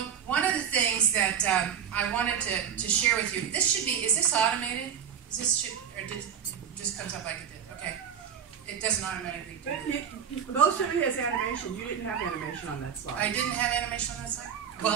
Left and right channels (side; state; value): left; quieter; 8.1 dB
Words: one of the things that I wanted to share with you, is this automated? Or it just comes up like it did? Okay. It doesn't automatically do it. Most of it has animation. You didn't have animation on that slide. I didn't have animation on that slide?